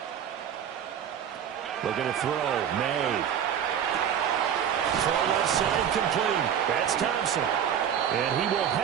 Looking to throw, made. Throw left side complete. That's Thompson. And he will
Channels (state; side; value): quieter; left; 8.9 dB